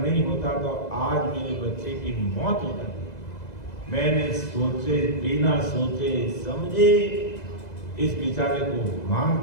होता तो आज मेरे बच्चे की मौत हो जाती। मैंने सोचे, बिना सोचे समझे इस बेचारे को मार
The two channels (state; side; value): late; right; 2.0 ms